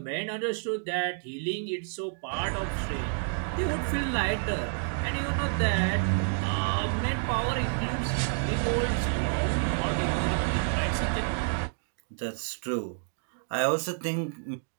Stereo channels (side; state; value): left; silent; digital silence